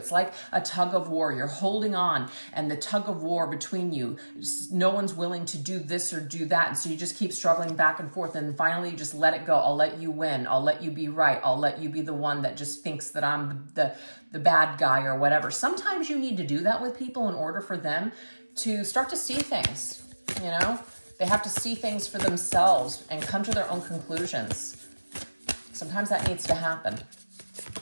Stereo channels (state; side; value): inverted; both; correlation -1.00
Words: like a tug of war. You're holding on, and the tug of war between you, no one's willing to do this or do that. And so you just keep struggling back and forth. And finally, you just let it go. I'll let you win. I'll let you be right. I'll let you be the one that just thinks that I'm the bad guy or whatever. Sometimes you need to do that with people in order for them to start to see things, you know? They have to see things for themselves and come to their own conclusions. Sometimes that needs to happen.